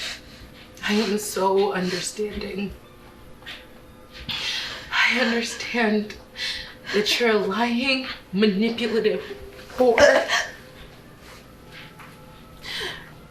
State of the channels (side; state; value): both; identical; correlation 1.00